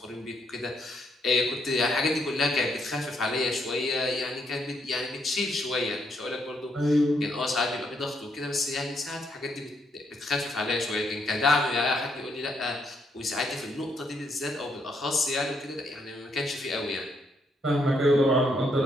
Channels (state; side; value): normal; both; correlation 0.74